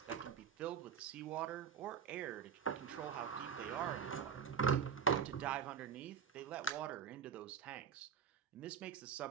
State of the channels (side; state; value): left; quieter; 7.5 dB